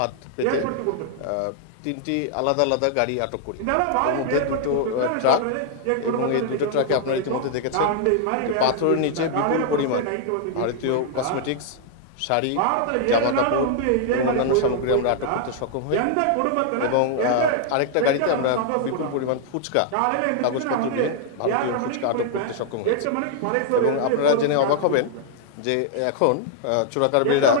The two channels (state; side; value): different; both; correlation -0.01